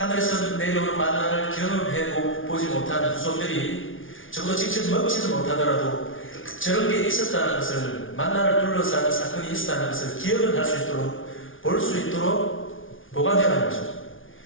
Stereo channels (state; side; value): late; right; 0.57 ms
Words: 내려오는 만나를 경험해 보지 못한 후손들이 적어도 직접 먹지도 못하더라도 저런 게 있었다는 것을, 만나를 둘러싼 사건이 있었다는 것을 기억을 할 수 있도록, 볼 수 있도록 보관해라는 거죠.